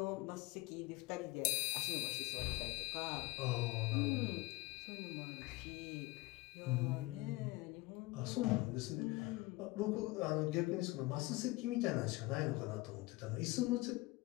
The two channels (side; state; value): right; quieter; 21.4 dB